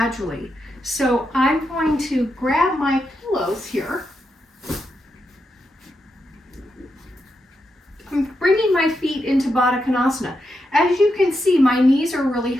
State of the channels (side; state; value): both; normal; correlation 0.85